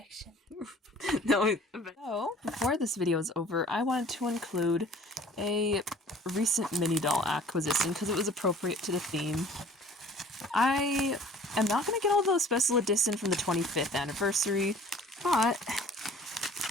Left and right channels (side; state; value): both; normal; correlation 0.50